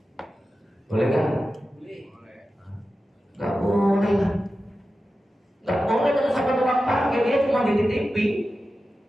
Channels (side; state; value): both; normal; correlation 0.93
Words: boleh nggak? Nggak boleh lah. Nggak boleh kalau sampai tukang parkir, dia cuma dititipi